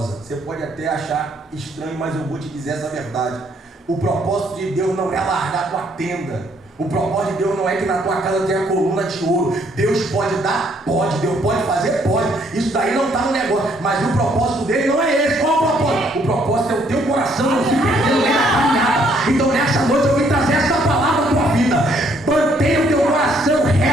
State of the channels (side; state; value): both; normal; correlation 0.67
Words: Você pode até achar estranho, mas eu vou te dizer essa verdade. O propósito de Deus não é largar a tua tenda. O propósito de Deus não é que na tua casa tenha coluna de ouro. Deus pode dar? Pode. Deus pode fazer? Pode. Isso daí não está no negócio. Mas o propósito dele não é esse. Qual é o propósito? O propósito é o teu coração não se perdendo nem na caminhada. Então nessa noite eu vim trazer essa palavra à tua vida. Mantenha o teu coração